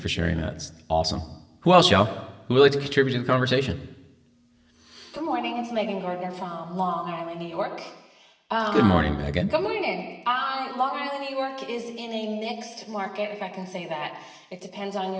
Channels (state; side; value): identical; both; correlation 1.00